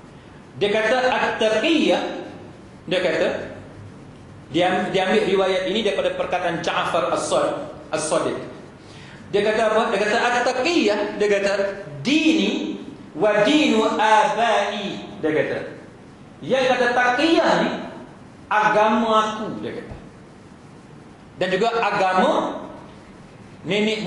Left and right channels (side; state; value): both; identical; correlation 1.00